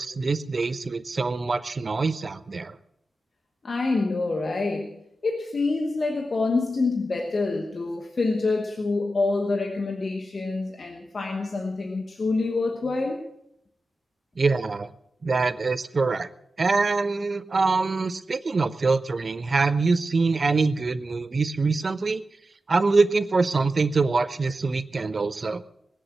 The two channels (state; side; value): normal; both; correlation 0.91